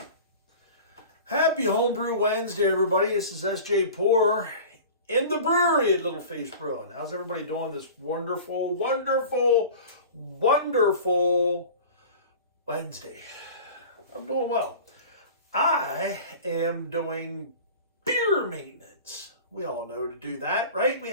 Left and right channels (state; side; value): inverted; both; correlation -0.38